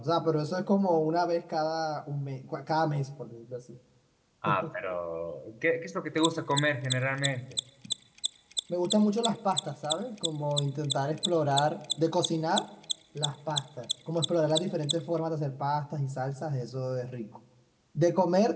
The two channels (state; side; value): identical; both; correlation 1.00